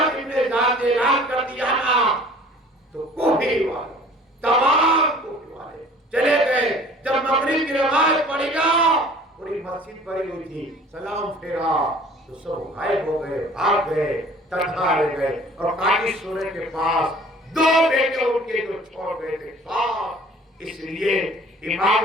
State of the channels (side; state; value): both; normal; correlation 0.49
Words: زیاد نے اعلان کر دیا نا تو کوفی والے تمام کوفی والے چلے گئے. جب مغرب کی نماز پڑھی نا پوری مسجد بھری ہوئی تھی، سلام پھیرا تو سب غائب ہو گئے، بھاگ گئے، تنہا رہ گئے. اور قاضی سورے کے پاس 2 بیٹے ان کے جو چھوڑ گئے تھے پاس، اس لیے